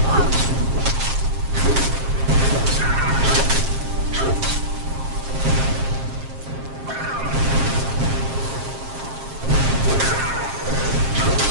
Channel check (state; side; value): late; left; 7.5 ms